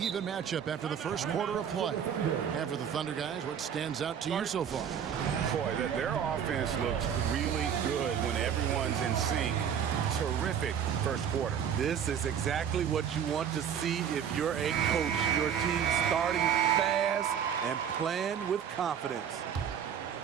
matchup after the first quarter of play. And for the Thunder guys, what stands out to you so far? Boy, their offense looks really good when everyone's in sync. Terrific first quarter. This is exactly what you want to see if you're a coach. Your team starting fast and playing with confidence.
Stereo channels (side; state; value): left; quieter; 8.3 dB